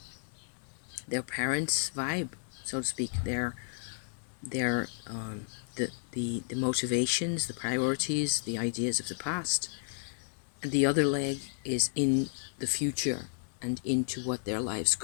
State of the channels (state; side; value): silent; right; digital silence